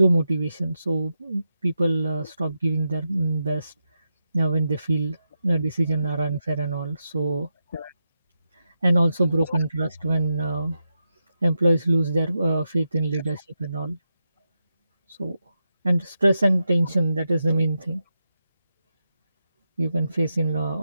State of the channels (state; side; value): inverted; both; correlation -0.87